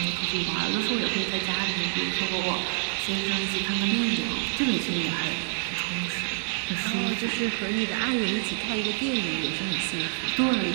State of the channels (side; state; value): left; silent; digital silence